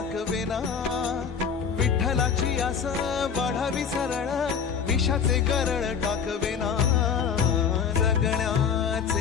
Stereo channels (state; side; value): quieter; right; 6.8 dB